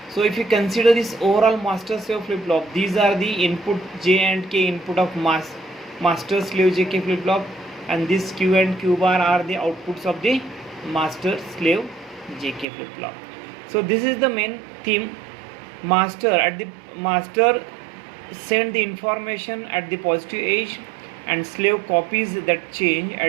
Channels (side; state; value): left; drops out; at 12.7 s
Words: so if you consider this overall master slave flip flop, these are the input J and K input of master slave JK flip flop, and this Q and Q bar are the outputs of the master slave JK flip flop. So this is the main theme. Master send the information at the positive age, and slave copies that change